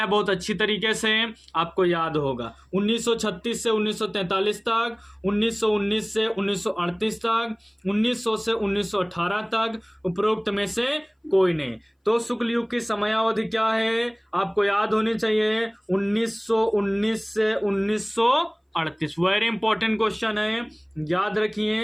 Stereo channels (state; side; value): identical; both; correlation 1.00